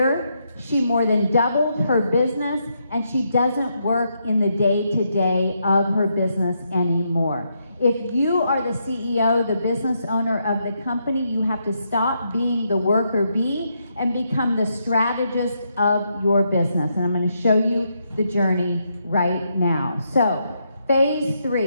she more than doubled her business, and she doesn't work in the day-to-day of her business anymore. If you are the CEO, the business owner of the company, you have to stop being the worker bee and become the strategist of your business. And I'm going to show you the journey right now. So, phase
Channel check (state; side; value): inverted; both; correlation -0.79